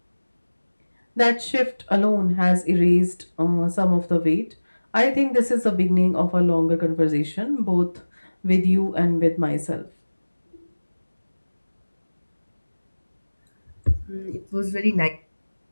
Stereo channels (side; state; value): both; inverted; correlation -1.00